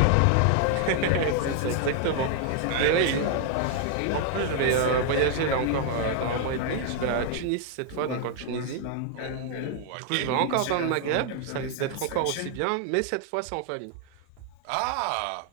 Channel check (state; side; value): different; both; correlation 0.00